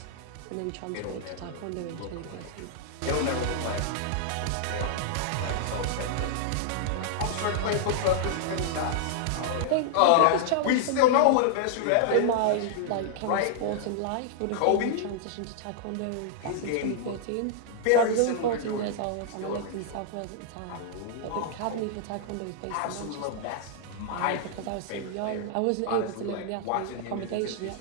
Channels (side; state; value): both; different; correlation -0.01